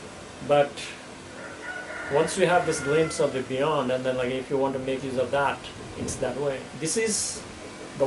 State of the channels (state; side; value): identical; both; correlation 1.00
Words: But once you have this glimpse of the beyond, and then if you want to make use of that, it's that way. This is the